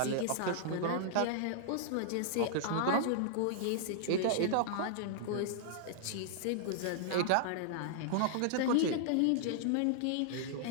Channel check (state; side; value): different; both; correlation -0.01